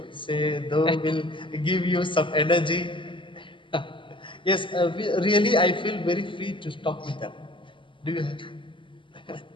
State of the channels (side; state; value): right; late; 0.24 ms